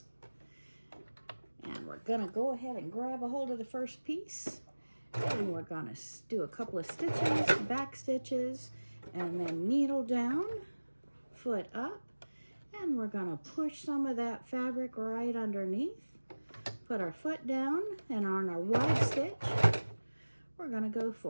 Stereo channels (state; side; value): inverted; both; correlation -1.00